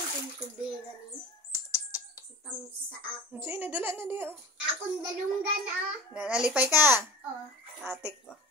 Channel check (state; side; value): normal; both; correlation 0.37